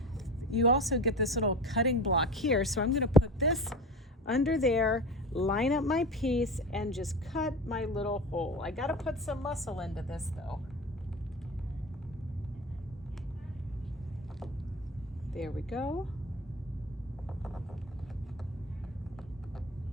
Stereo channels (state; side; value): normal; both; correlation 0.30